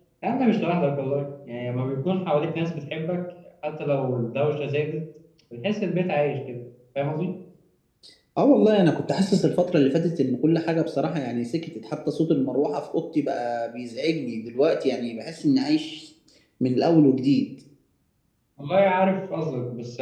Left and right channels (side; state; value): both; identical; correlation 1.00